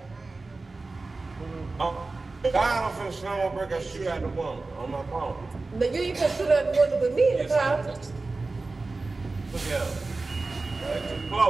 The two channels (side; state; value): left; quieter; 3.5 dB